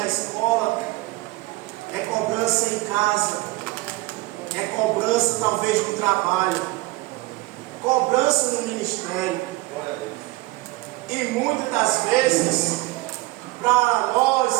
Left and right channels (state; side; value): quieter; left; 20.8 dB